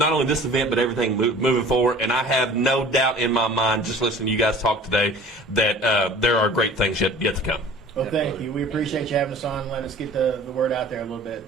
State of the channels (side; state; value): both; normal; correlation 0.45